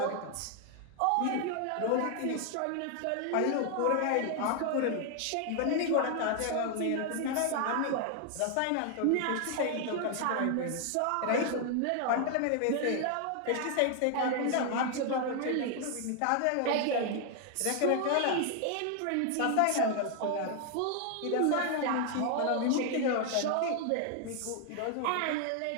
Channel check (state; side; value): different; both; correlation 0.00